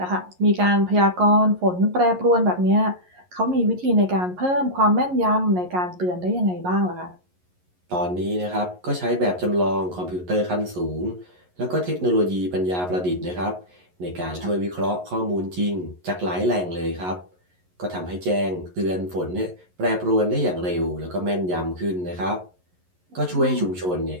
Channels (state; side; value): late; left; 11 ms